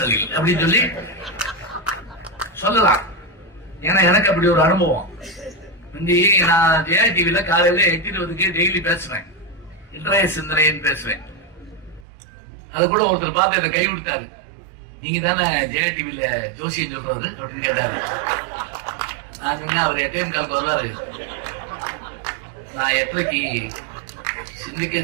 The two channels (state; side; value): drops out; left; at 12.1 s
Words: அப்படின்னு சொல்லி சொல்லலாம். ஏன்னா எனக்கு அப்படி ஒரு அனுபவம். நான் ஜெயா டிவில காலையில 8:20 டெய்லி பேசுவேன், இன்றைய சிந்தனைன்னு பேசுவேன். அது கூட ஒருத்தர் பார்த்து என்ன கை கொடுத்தாரு. நீங்க தானே ஜெயா டிவில ஜோசியம் சொல்றது அப்படின்னு கேட்டாரு. நான் சொன்னேன் அவர் 8:15 வருவாரு, நான் 8:30 சிந்திக்க